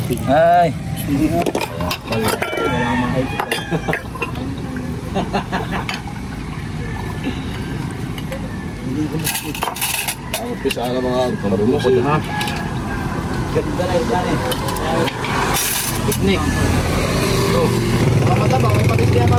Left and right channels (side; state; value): both; identical; correlation 1.00